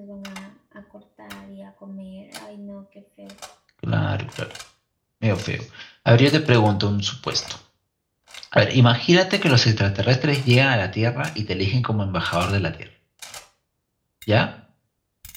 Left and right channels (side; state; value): both; identical; correlation 1.00